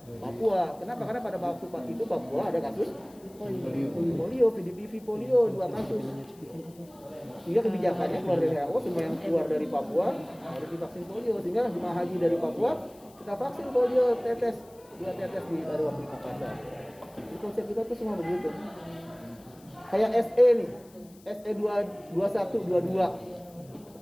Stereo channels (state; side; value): noise; left; hiss, 27 dB below the sound